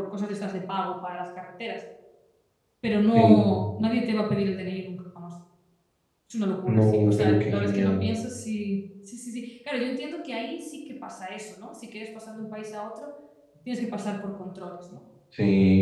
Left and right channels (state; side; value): identical; both; correlation 1.00